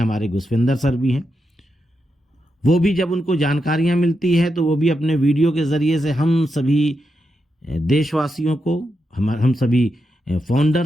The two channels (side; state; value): both; normal; correlation 0.85